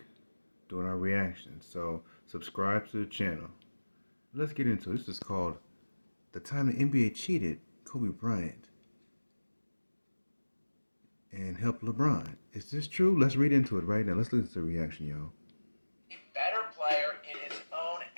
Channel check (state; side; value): inverted; both; correlation -1.00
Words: doing our reactions. So subscribe to the channel. Let's get into it. This is called The Time the NBA Cheated Kobe Bryant and Helped LeBron. Is this true? Let's read into it right now. Let's listen to the reaction, y'all. Better player in his own